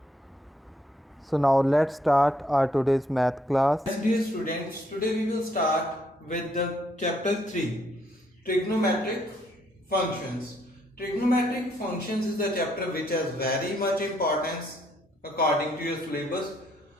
So, now let's start our today's math class. Yes, dear students, today we will start with the chapter 3, trigonometric functions. Trigonometric functions is the chapter which has very much importance according to your syllabus.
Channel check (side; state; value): both; normal; correlation 0.71